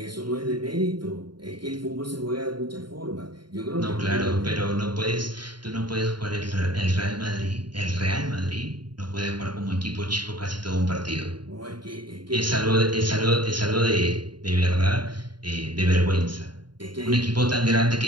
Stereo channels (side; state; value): left; late; 0.71 ms